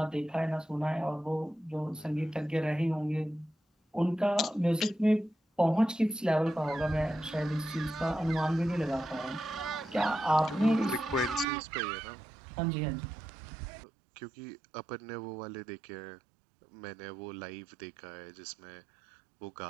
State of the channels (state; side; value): drops out; left; at 11.5 s